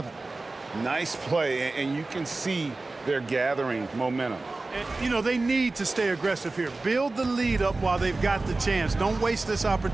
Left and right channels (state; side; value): quieter; left; 3.3 dB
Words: Nice play, and you can see they're gathering momentum. And, you know, they need to stay aggressive here. Build the lead up while they've got the chance. Don't waste this